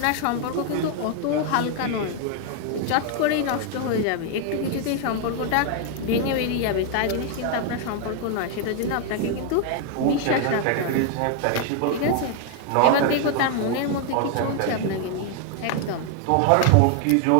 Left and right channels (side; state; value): both; different; correlation 0.00